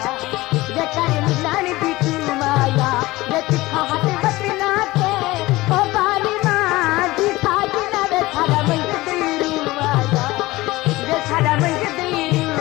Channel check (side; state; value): right; quieter; 19.4 dB